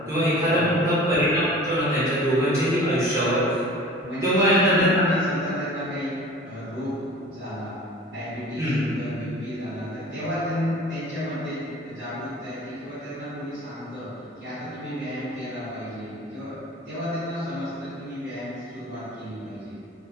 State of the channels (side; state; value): both; normal; correlation 0.42